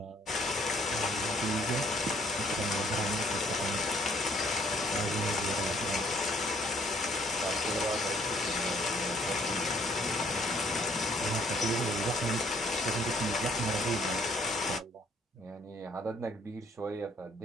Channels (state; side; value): normal; both; correlation 0.64